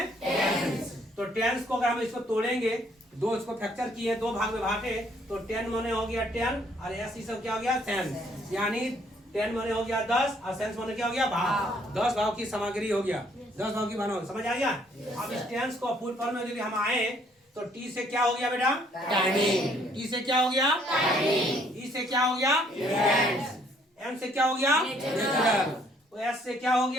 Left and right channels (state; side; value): normal; both; correlation 0.65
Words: टेंस। तो टेंस को अगर हम इसको तोड़ेंगे, दो इसको फ्रैक्चर किए, दो भाग में बांटे, तो 10 माने हो गया 10 और एस ई सब क्या हो गया सेंस, यानी 10 माने हो गया 10 और सेंस माने क्या हो गया भाव। 10 भाव की सामग्री हो गया, 10 भाव की भाव, समझ आ गया। अब इस टेंस को फुल फॉर्म में यदि हम आए तो टी से क्या हो गया बेटा, टाइमिंग। टी से क्या हो गया, टाइमिंग। ई से क्या हो गया, इवेंट्स। एम से क्या हो गया, नेचुरल। एस से क्या हो